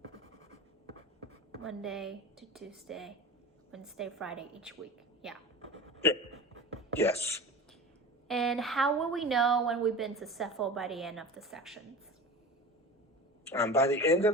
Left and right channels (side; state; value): both; normal; correlation 0.33